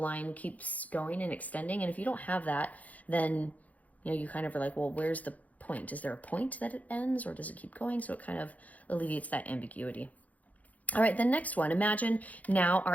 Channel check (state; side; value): late; right; 0.075 ms